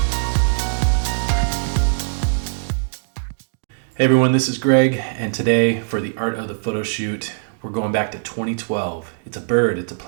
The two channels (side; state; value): left; silent; digital silence